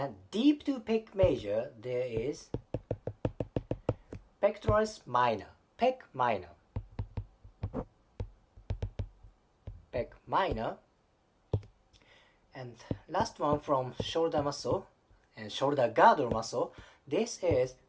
deep to pec major, there is pectoralis minor, pec minor. Pec minor. And last one from shoulder muscle and shoulder girdle muscle, this is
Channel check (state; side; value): identical; both; correlation 1.00